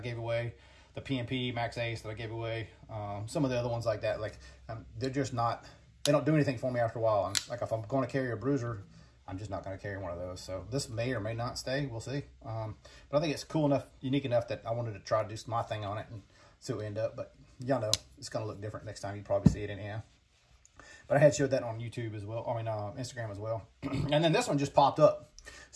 away, the PMP Max Ace that I gave away, some of the other ones like that, like they're just not they don't do anything for me after a while. Like if I'm going to carry a bruiser, I'm just not going to carry one of those. So this may or may not stay. We'll see. But I think it's cool enough, unique enough that I wanted to try to do my thing on it and see what we end up. But y'all know it's going to look different next time. You probably see it anyhow. But I had showed that on YouTube as well. I mean, Instagram as well. And then this one just popped up.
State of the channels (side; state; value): both; identical; correlation 1.00